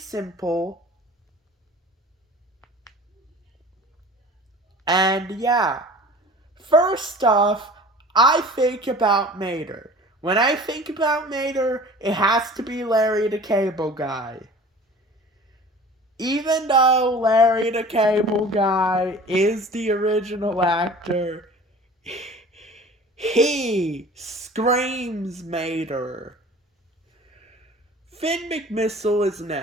And yeah, first off, I think about Mater. When I think about Mater, it has to be Larry the Cable Guy. Even though Larry the Cable Guy is the original actor, he screams Mater. Finn McMissile is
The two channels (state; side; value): normal; both; correlation 0.43